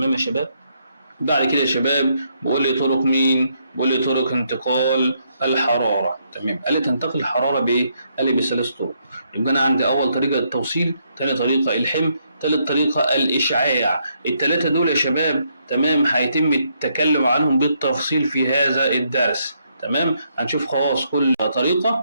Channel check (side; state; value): both; inverted; correlation -0.75